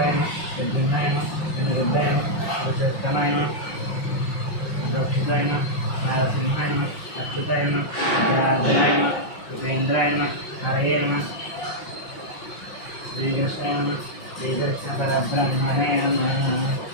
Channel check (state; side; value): late; right; 5.7 ms